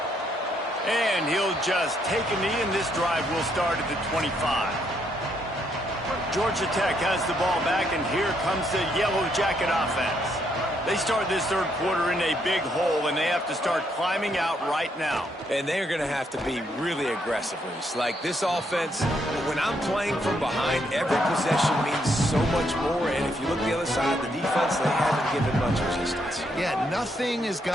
And he'll just take a knee, and this drive will start at the 25. Georgia Tech has the ball back, and here comes the Yellow Jacket offense. They start this third quarter in a big hole, and they have to start climbing out right now. And they're going to have to be really aggressive, Reese. Like this offense, when I'm playing from behind, every possession means so much more. And if you look the other side, the defense, they haven't given much resistance. Yeah, nothing has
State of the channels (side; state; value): both; normal; correlation 0.74